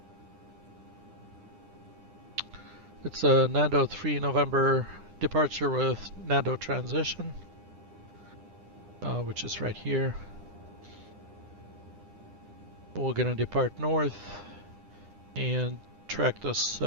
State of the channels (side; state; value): left; late; 9.9 ms